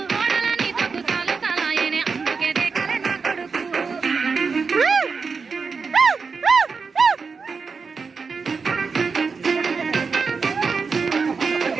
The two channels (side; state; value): left; quieter; 5.0 dB